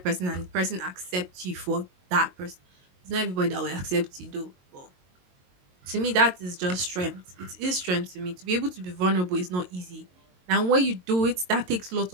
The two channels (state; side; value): late; left; 22 ms